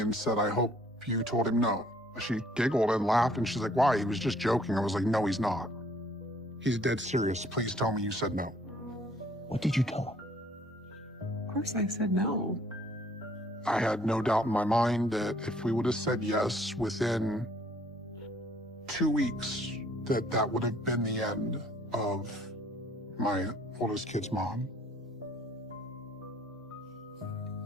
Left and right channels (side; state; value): both; normal; correlation 0.61